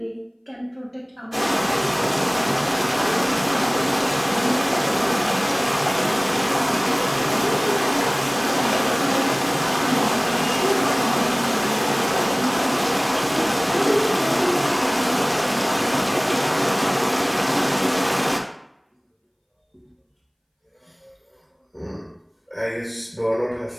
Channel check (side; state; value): both; identical; correlation 1.00